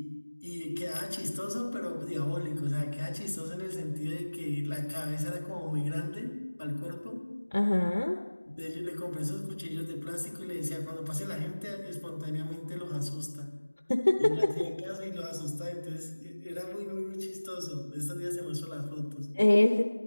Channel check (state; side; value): inverted; both; correlation -1.00